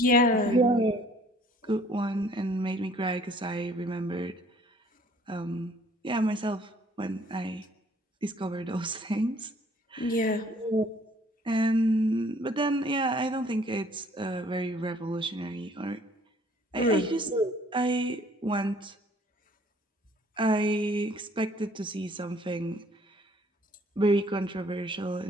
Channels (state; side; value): normal; both; correlation 0.57